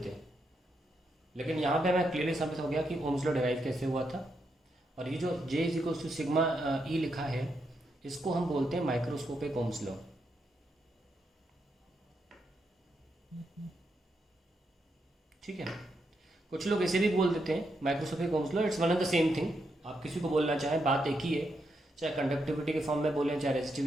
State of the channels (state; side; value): normal; both; correlation 0.82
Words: हैं, लेकिन यहाँ पे हमें क्लियरली साबित हो गया कि Ohm's law डिराइव कैसे हुआ था. और ये जो J is equals to sigma E लिखा है, इसको हम बोलते हैं माइक्रोस्कोपिक Ohm's law. ठीक है, कुछ लोग ऐसे भी बोल देते हैं microscopic Ohm's law. It's one of the same thing. आप किसी को बोलना चाहें, बात एक ही है, चाहे कंडक्टिविटी के फॉर्म में बोलें चाहे